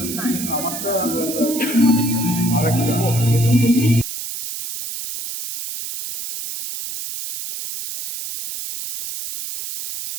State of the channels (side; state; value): right; noise; hiss, 7 dB below the sound